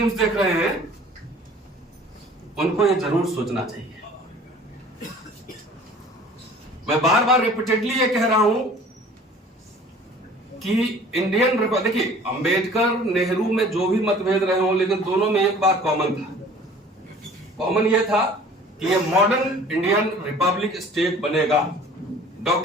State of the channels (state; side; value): normal; both; correlation 0.48